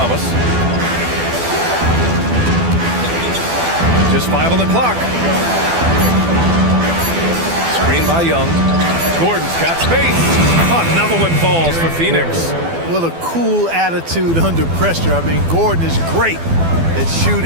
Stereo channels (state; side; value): late; left; 12 ms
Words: Just 5 on the clock. Screen by Young. Gordon's got space. Another one falls for Phoenix. What a cool attitude under pressure. I mean, Gordon is great at